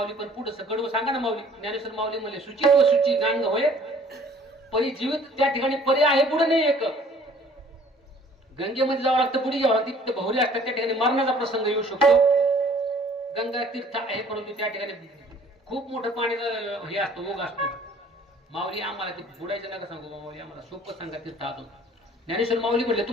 पण पुढे कडवं सांगा ना माऊली. ज्ञानेश्वर माऊली म्हणले शुचित्व शुचिगांग होय परी जीवित त्या ठिकाणी पर्याय आहे पुढे नाही एक. गंगेमध्ये जावं लागतं, पुढे जावं लागतं. तिथे बहुरे असतात, त्या ठिकाणी मरणाचा प्रसंग येऊ शकतो. गंगा तीर्थ आहे परंतु त्या ठिकाणी खूप मोठं पाण्याचं हे असतो, ओघ असतो. माऊली आम्हाला ते बुडायचं नका सांगू माऊली, आम्हाला सोपं सांगा तीर्थ आतून. ज्ञानेश्वर माऊली म्हटले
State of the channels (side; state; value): both; normal; correlation 0.54